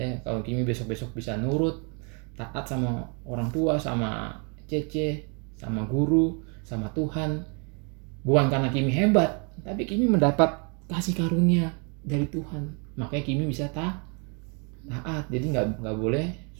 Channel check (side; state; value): left; quieter; 35.7 dB